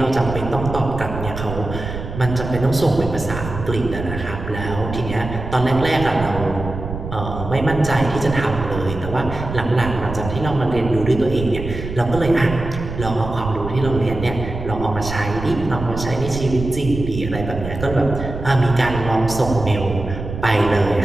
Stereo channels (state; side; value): noise; right; rumble, 8 dB below the sound